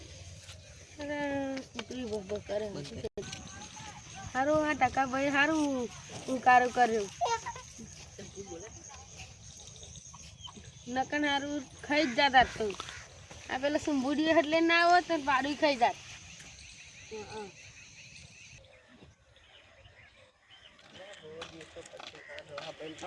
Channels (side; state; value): both; identical; correlation 1.00